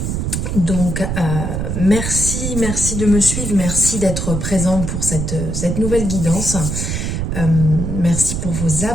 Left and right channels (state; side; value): noise; right; rumble, 2 dB below the sound